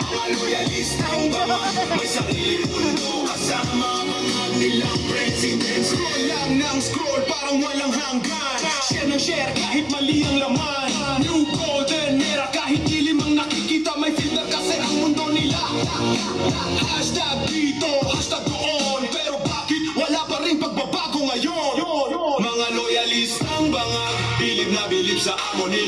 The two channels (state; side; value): noise; left; hum, 27 dB below the sound